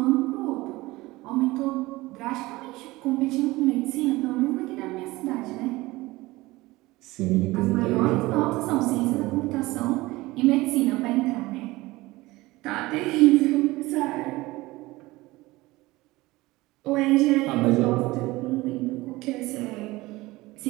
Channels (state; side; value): quieter; left; 20.0 dB